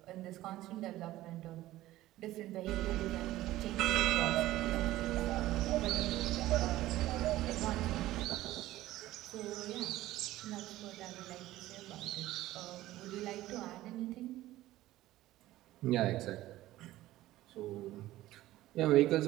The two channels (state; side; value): quieter; left; 15.8 dB